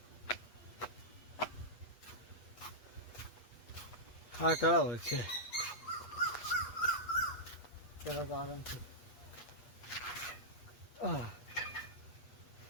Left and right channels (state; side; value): late; right; 8.2 ms